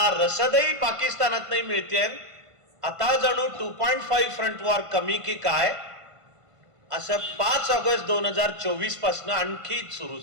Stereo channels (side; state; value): left; late; 1.5 ms